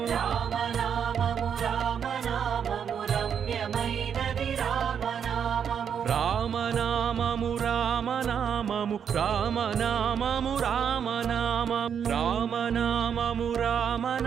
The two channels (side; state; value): left; quieter; 7.7 dB